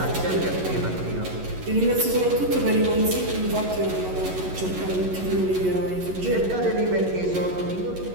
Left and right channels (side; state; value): left; late; 11 ms